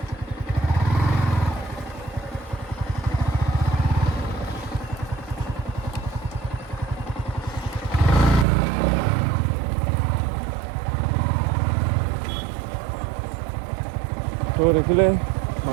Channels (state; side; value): drops out; left; at 8.5 s